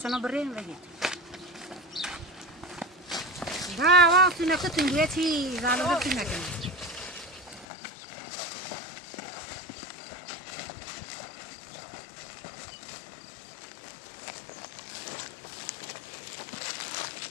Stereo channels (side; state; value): right; drops out; at 7.7 s